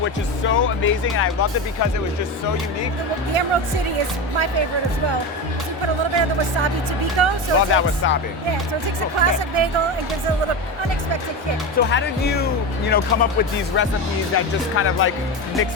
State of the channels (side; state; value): both; normal; correlation 0.21